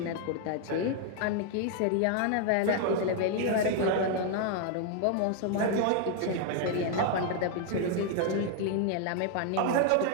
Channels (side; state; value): both; different; correlation 0.00